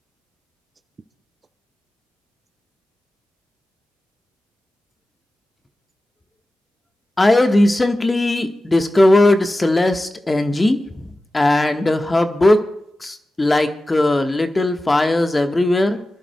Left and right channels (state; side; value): normal; both; correlation 0.94